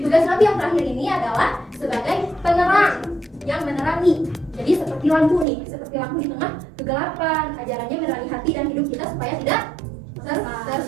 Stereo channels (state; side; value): drops out; left; at 5.5 s